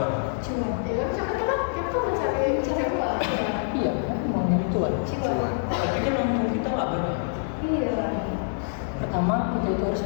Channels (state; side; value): silent; right; digital silence